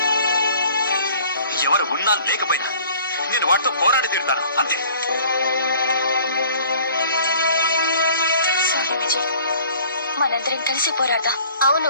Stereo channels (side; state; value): both; inverted; correlation -0.50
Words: ఎవరు ఉన్నా లేకపోయినా నేను వాటితో పోరాడి తీరుతాను, అంతే. సారీ విజయ్, మనందరం కలిసి పోరాడదాం.